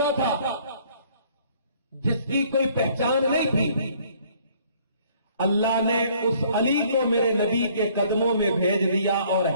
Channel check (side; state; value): both; inverted; correlation -0.59